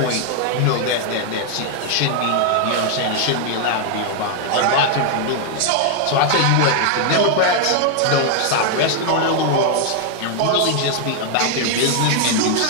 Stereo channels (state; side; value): different; both; correlation 0.00